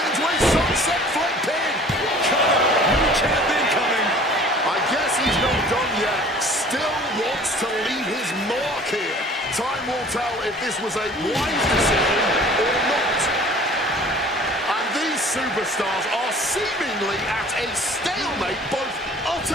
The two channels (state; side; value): normal; both; correlation 0.48